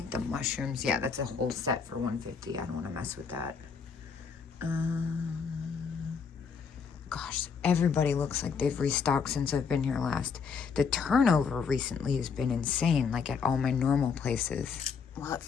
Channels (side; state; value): right; quieter; 5.8 dB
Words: the mushrooms, yeah, that's a whole set for $150. I don't want to mess with that. Gosh, everybody looks like they've restocked since I've been here last. The turnover recently has been insane, like at all my normal places. Well, at